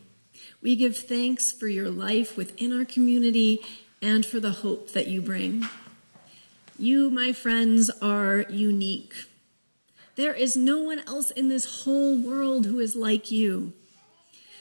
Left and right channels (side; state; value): both; inverted; correlation -1.00